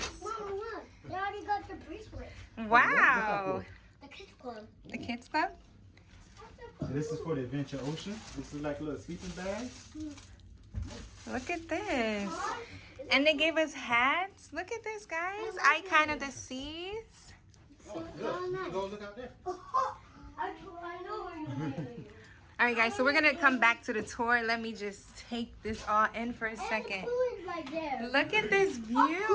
Mom, look. They already got the bracelet. Wow. The kids club. The kids club? And this is for the Adventure Ocean. This is like a little sleeping bag. Look at this. And they gave us hats. Look at this, guys. Icon of the seas. Oh, look. Go look out there. I know where you're going. All right, guys, so we're going to come back to the tour. Let me just take this all in for a second. Pool is right there. Look at this view.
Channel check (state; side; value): identical; both; correlation 1.00